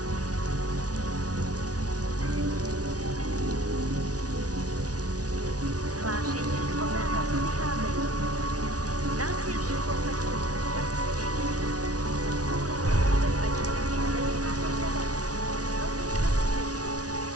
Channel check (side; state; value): left; late; 0.68 ms